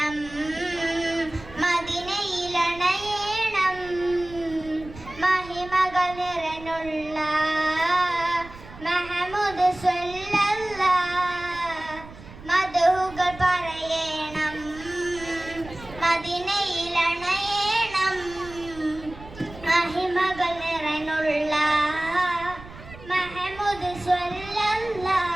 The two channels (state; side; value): noise; right; rumble, 17 dB below the sound